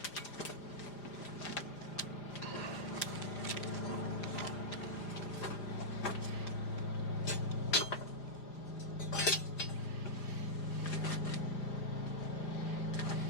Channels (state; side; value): late; right; 5.0 ms